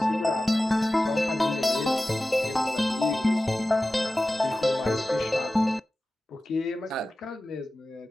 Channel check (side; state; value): both; normal; correlation 0.96